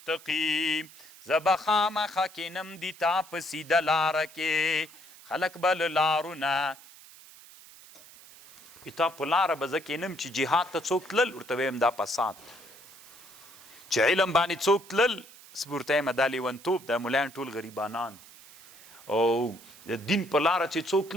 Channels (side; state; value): right; noise; hiss, 21 dB below the sound